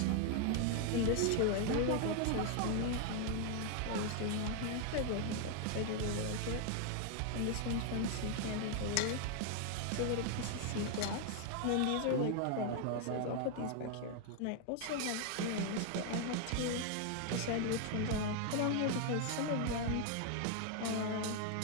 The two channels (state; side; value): different; both; correlation 0.00